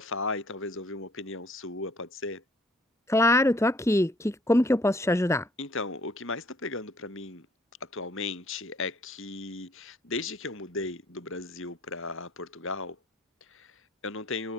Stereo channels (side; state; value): both; normal; correlation 0.60